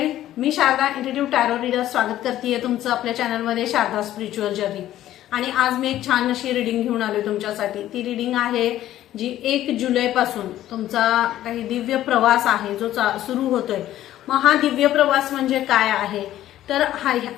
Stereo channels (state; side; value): quieter; right; 13.2 dB